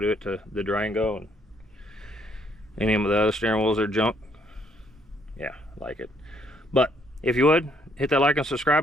it to the Durango and any of the other steering wheels are junk. Yeah, like it. But if you would, hit that like and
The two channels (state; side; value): normal; both; correlation 0.68